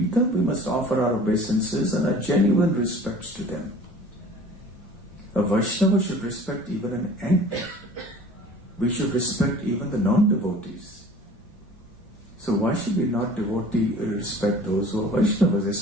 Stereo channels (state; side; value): normal; both; correlation 0.46